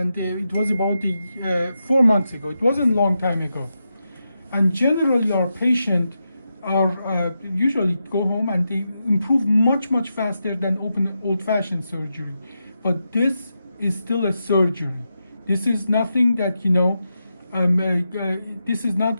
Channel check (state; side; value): inverted; both; correlation -0.87